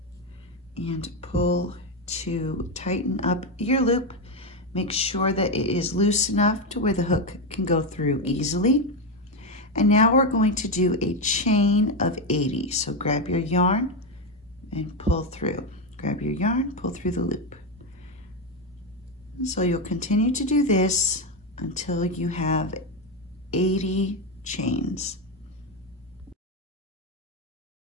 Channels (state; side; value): normal; both; correlation 0.10